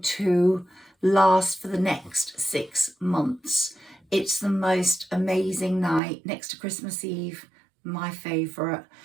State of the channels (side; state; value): left; drops out; at 6.0 s